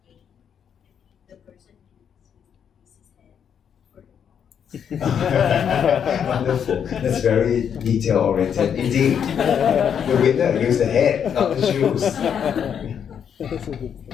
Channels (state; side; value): quieter; right; 8.0 dB